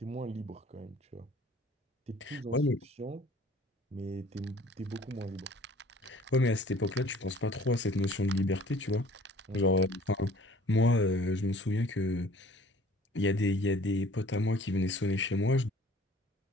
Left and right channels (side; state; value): both; normal; correlation 0.52